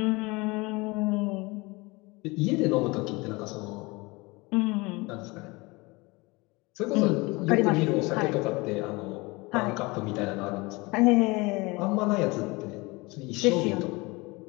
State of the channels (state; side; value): quieter; right; 24.4 dB